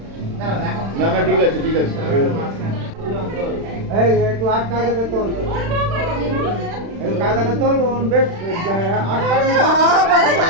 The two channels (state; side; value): late; left; 36 ms